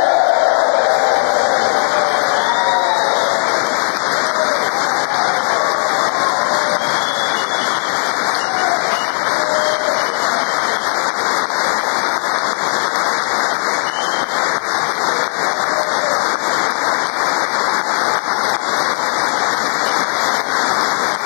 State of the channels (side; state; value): right; silent; digital silence